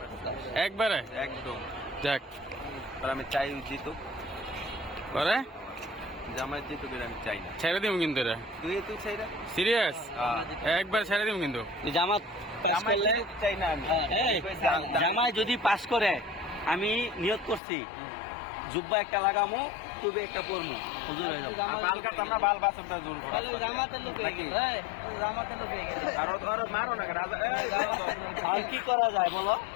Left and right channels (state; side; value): drops out; right; at 17.6 s